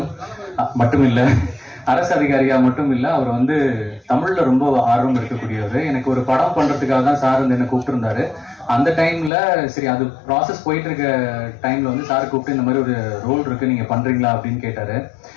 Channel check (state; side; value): drops out; right; at 9.3 s